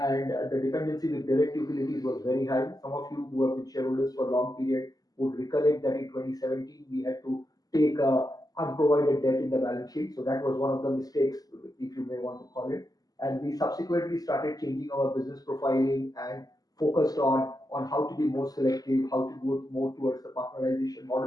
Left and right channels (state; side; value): late; right; 0.18 ms